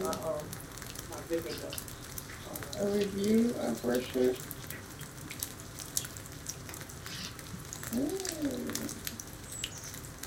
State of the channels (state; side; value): identical; both; correlation 1.00